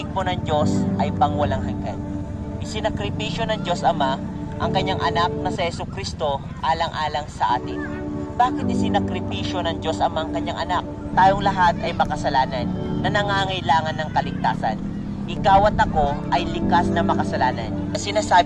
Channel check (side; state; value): both; identical; correlation 1.00